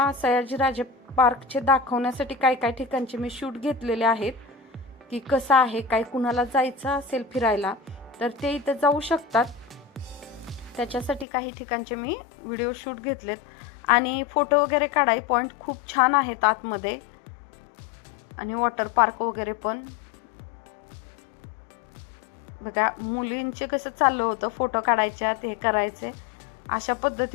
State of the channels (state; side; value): drops out; right; at 11.2 s